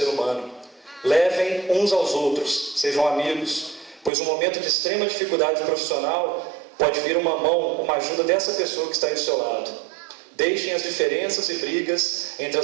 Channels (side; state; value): left; drops out; at 4.1 s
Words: humano. Levem uns aos outros, sejam amigos, pois um momento de extrema dificuldade profissional pode vir uma mão, uma ajuda dessa pessoa que está aí do seu lado. Deixem as diferenças e brigas entre